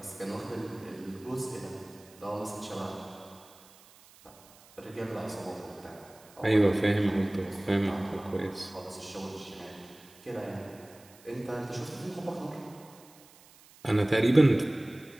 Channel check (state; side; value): noise; right; hiss, 25 dB below the sound